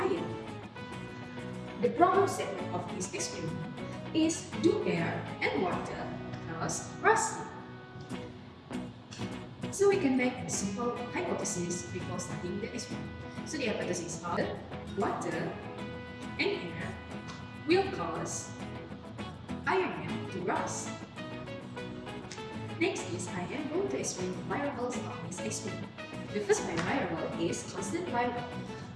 The problem statement of this experiment is do air and water cause rusting? So, we can make a simple hypothesis before studying the experiment. So, the hypothesis of water and air will cause iron to rust. Next is I am going to explain the variables of this experiment. The first variable is constant variable.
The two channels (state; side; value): identical; both; correlation 1.00